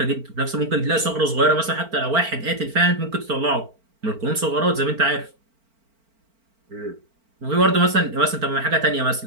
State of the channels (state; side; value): late; left; 4.4 ms